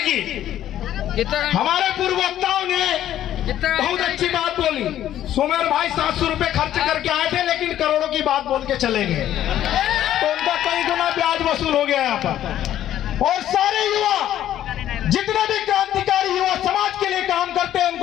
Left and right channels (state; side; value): quieter; right; 11.9 dB